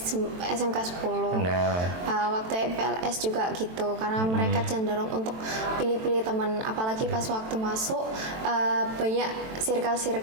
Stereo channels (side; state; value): left; late; 23 ms